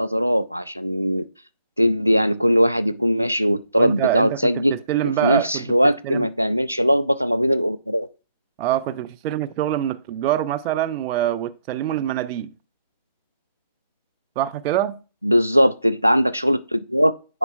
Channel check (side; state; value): both; inverted; correlation -0.77